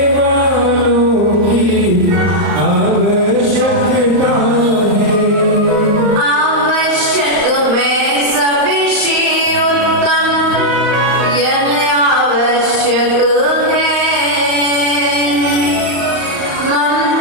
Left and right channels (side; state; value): left; late; 34 ms